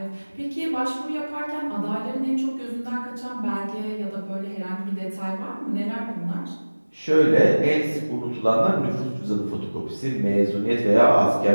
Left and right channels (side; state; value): both; inverted; correlation -1.00